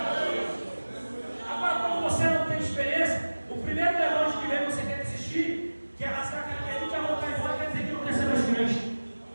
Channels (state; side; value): inverted; both; correlation -1.00